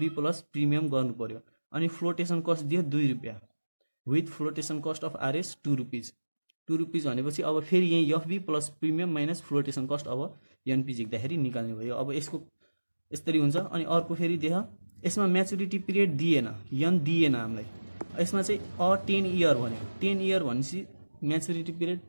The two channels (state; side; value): inverted; both; correlation -1.00